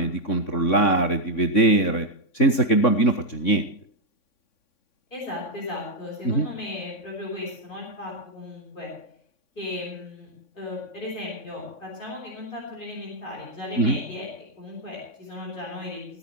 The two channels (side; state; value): right; late; 3.6 ms